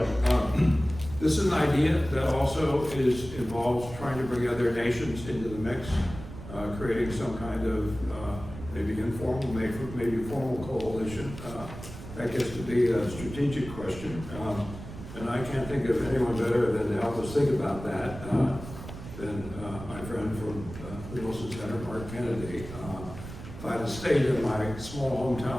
this is an idea that also involves trying to bring other nations into the mix, creating some kind of maybe informal, maybe formal coalition. That gets to be a strategic question. And I can't think of anyone better than to help us think about that than my friend from the Wilson Center, Mark Kennedy. If I had stayed in my small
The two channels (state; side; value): noise; right; rumble, 12 dB below the sound